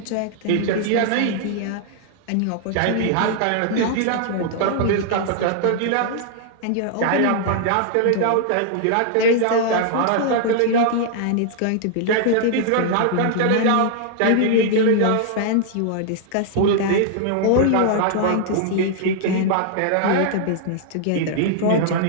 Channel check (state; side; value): different; both; correlation -0.01